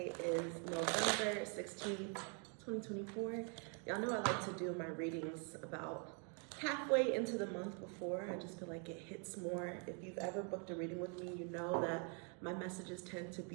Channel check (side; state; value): left; quieter; 38.7 dB